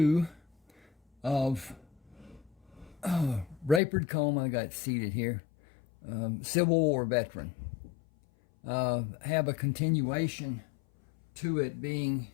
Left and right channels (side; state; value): right; drops out; at 3.8 s